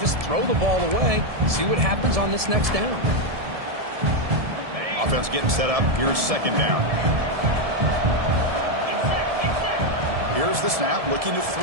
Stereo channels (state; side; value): late; left; 1.7 ms